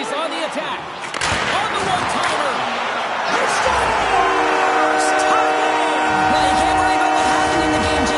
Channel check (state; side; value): identical; both; correlation 1.00